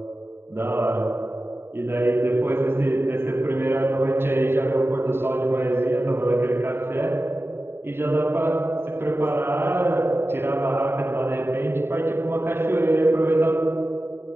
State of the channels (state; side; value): late; left; 0.11 ms